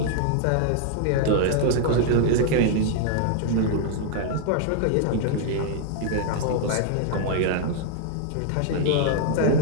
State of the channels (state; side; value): different; both; correlation 0.00